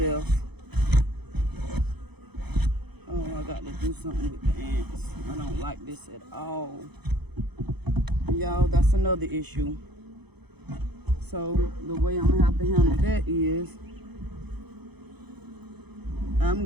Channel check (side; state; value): left; late; 0.98 ms